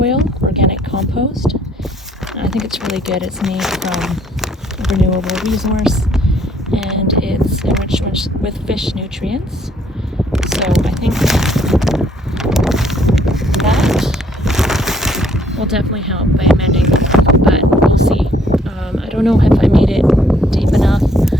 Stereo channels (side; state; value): both; normal; correlation 0.65